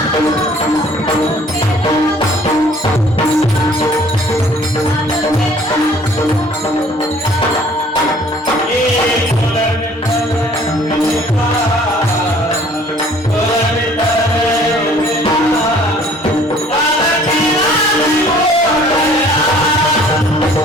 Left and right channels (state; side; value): normal; both; correlation 0.55